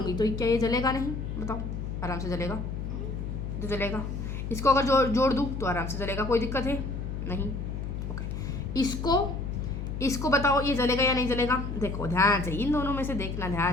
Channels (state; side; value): noise; left; hum, 5 dB below the sound